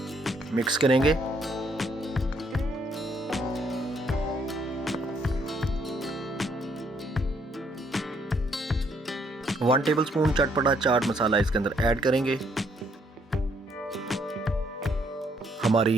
मिक्स करेंगे। वन टेबलस्पून चटपटा चाट मसाला इसके अंदर ऐड करेंगे।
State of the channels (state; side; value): normal; both; correlation 0.69